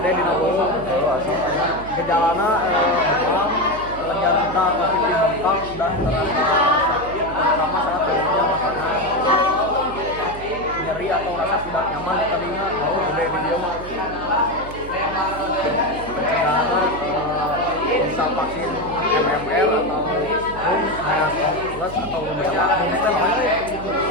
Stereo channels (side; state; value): right; noise; hum, 13 dB below the sound